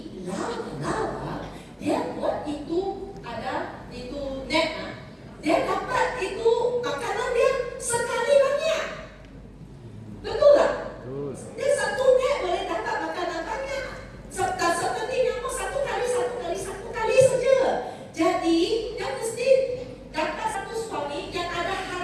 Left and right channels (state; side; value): identical; both; correlation 1.00